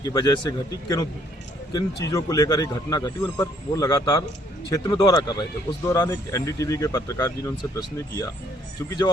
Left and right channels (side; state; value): both; normal; correlation 0.65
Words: की वजह से घटी, किन चीज़ों को लेकर एक घटना घटी, उन पर वो लगातार क्षेत्र में दौरा कर रहे थे। उस दौरान एक एनडीटीवी के पत्रकार जी ने उनसे प्रश्न किया, क्योंकि जब